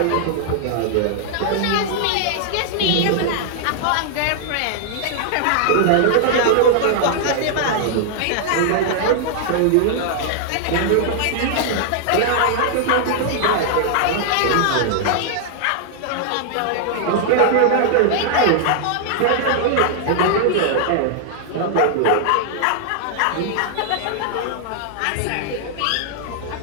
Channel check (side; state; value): both; different; correlation -0.01